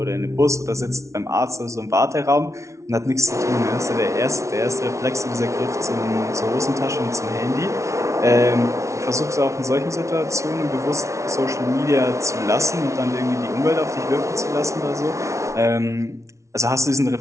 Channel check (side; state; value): left; late; 0.14 ms